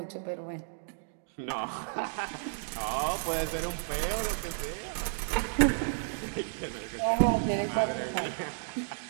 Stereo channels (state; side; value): silent; left; digital silence